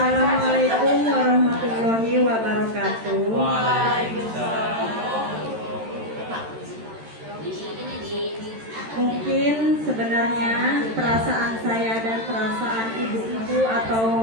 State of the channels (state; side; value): late; left; 13 ms